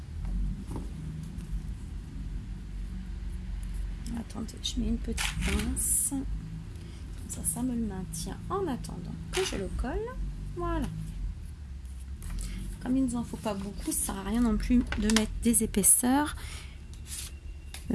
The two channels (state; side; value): identical; both; correlation 1.00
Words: Attendez, je mets une petite pince. Comme ça me le maintient en attendant que je le colle. Voilà. Comme il ne nous en faut pas beaucoup, ça sert à rien non plus de mettre des épaisseurs.